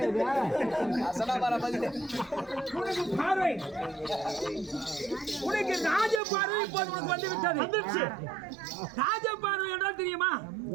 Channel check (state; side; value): drops out; left; at 6.2 s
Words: உனக்கு ராஜ பார்வை இப்போது உனக்கு வந்து விட்டது. ராஜ பார்வை என்றால் தெரியுமா?